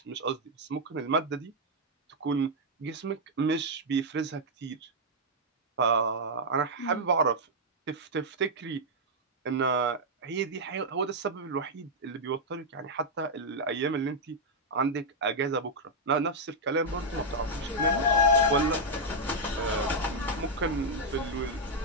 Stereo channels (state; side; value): normal; both; correlation -0.03